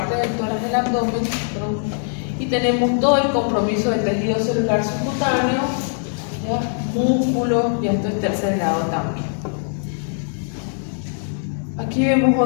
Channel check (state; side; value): silent; right; 65 dB below the other